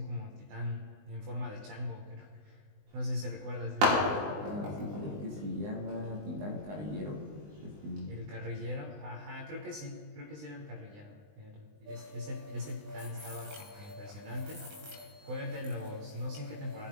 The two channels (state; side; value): late; left; 20 ms